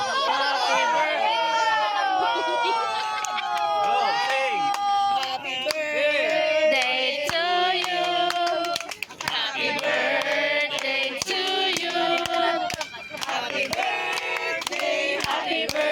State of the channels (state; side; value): identical; both; correlation 1.00